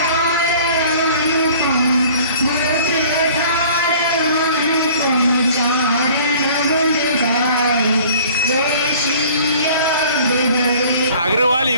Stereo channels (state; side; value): inverted; both; correlation -0.50